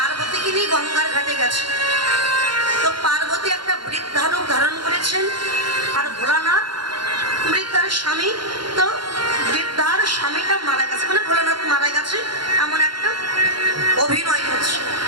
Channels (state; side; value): late; left; 0.72 ms